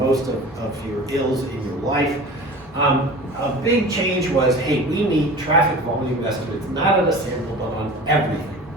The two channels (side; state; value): both; normal; correlation 0.37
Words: most of your ills in your life. A big change was, hey, we need traffic volume estimates, not on a sample, but on everything.